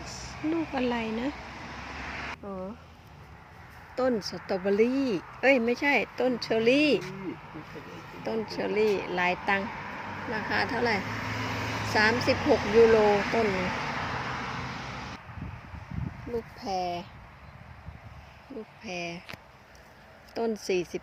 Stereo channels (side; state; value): both; identical; correlation 1.00